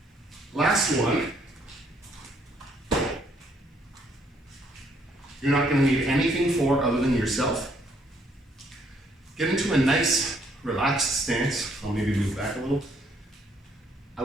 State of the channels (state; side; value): normal; both; correlation 0.68